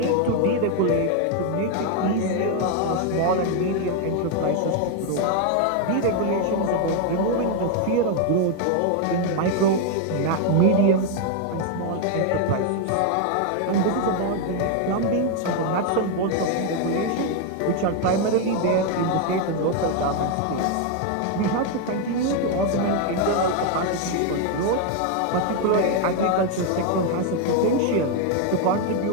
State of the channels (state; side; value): different; both; correlation 0.01